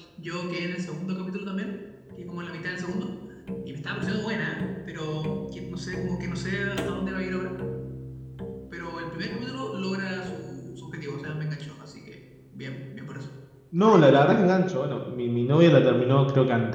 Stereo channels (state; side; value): identical; both; correlation 1.00